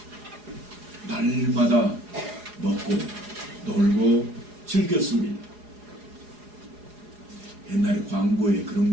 날마다 먹고 놀고 즐겼습니다. 옛날에 광고에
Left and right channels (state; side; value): late; left; 4.8 ms